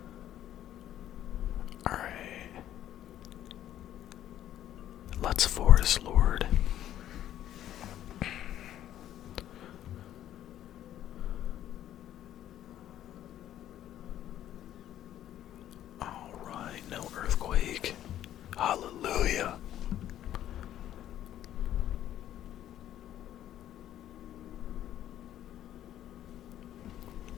Alright. Let's Forest Lord. Alright, no earthquake. Hallelujah.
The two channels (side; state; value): right; quieter; 11.9 dB